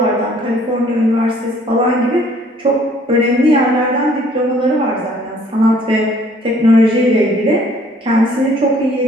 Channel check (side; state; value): both; normal; correlation 0.59